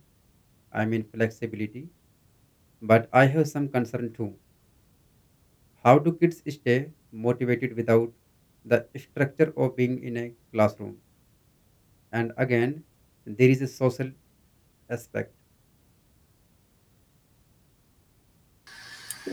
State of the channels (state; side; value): identical; both; correlation 1.00